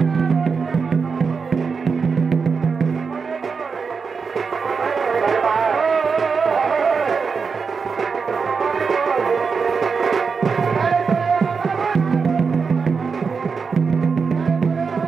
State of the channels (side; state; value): left; quieter; 5.3 dB